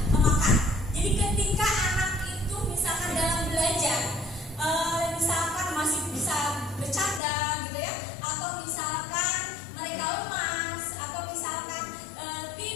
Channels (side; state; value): right; drops out; at 7.2 s